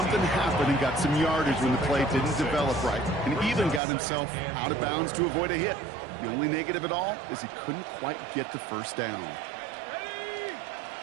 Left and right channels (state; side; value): drops out; left; at 3.8 s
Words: happen and got some yardage when the play didn't develop right, and even got himself out of bounds to avoid a hit. The only negative at all is he couldn't quite get the 1st down.